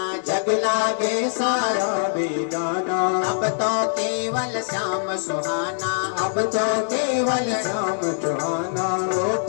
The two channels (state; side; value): silent; right; digital silence